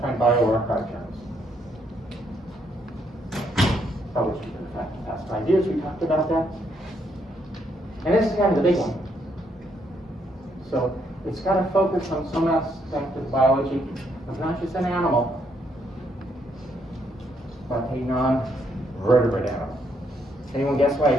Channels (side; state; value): both; normal; correlation 0.74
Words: bioRxiv journals. Published in the past 5 years, we talked about that. And this is kind of the big one. So it's got to focus on some aspect of biology of not just an animal, but a non-vertebrate animal. Anyone guess why I